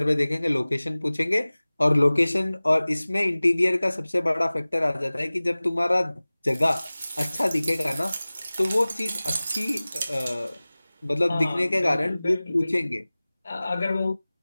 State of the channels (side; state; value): both; inverted; correlation -0.99